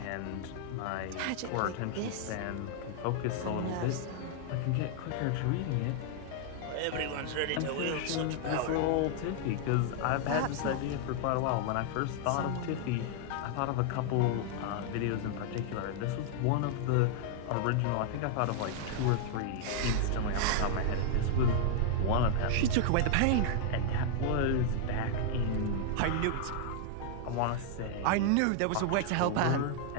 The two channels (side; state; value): both; different; correlation -0.01